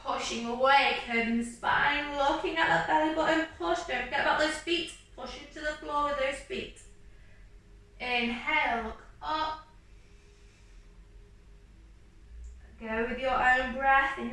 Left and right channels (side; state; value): both; identical; correlation 1.00